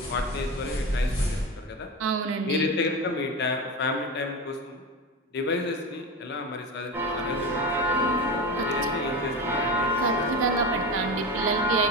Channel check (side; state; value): both; normal; correlation 0.23